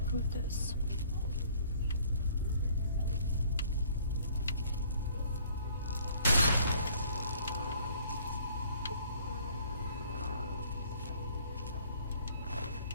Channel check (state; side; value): inverted; both; correlation -0.58